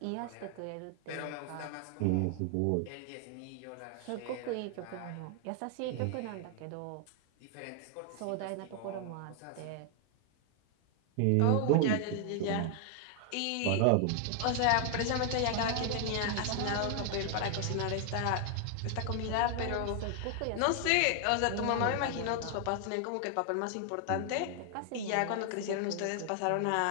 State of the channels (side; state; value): both; different; correlation 0.00